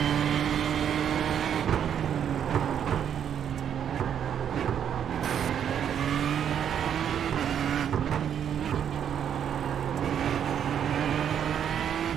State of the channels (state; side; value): quieter; left; 8.8 dB